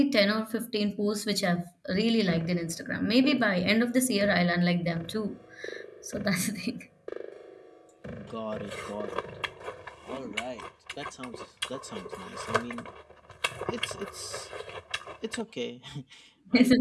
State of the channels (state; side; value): identical; both; correlation 1.00